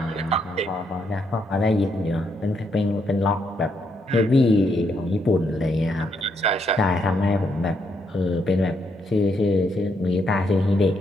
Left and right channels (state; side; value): normal; both; correlation 0.76